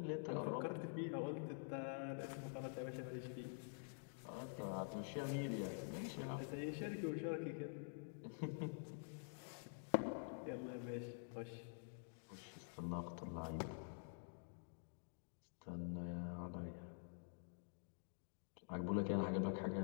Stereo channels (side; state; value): right; silent; digital silence